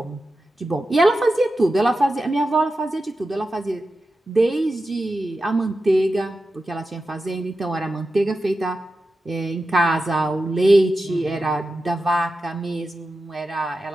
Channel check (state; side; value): normal; both; correlation 0.91